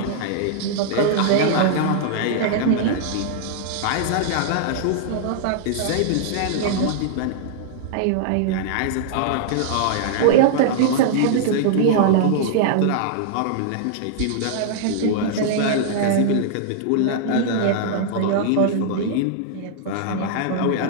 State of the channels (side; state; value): both; different; correlation -0.01